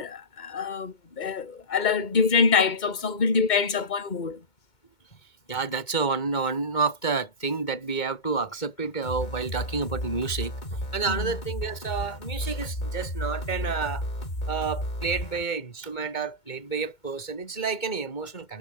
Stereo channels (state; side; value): late; right; 2.2 ms